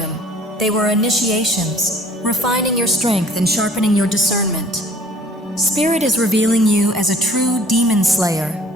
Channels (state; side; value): normal; both; correlation 0.54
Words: They were initiations, refining your strength and sharpening your discernment. Spirit is revealing you as a true demon slayer,